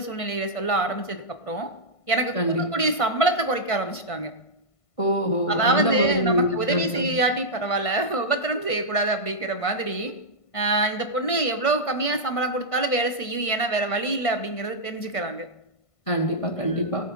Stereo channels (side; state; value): right; late; 1.5 ms